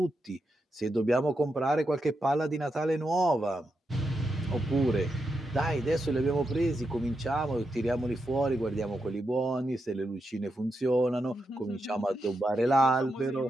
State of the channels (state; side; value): normal; both; correlation 0.85